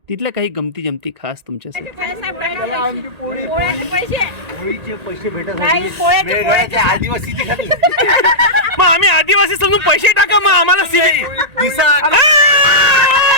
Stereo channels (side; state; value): left; late; 1.8 ms